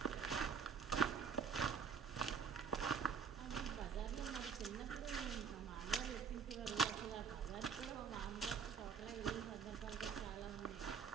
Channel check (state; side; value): quieter; left; 6.4 dB